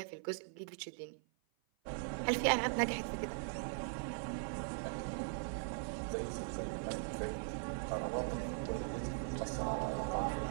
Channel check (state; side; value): silent; left; 51 dB below the other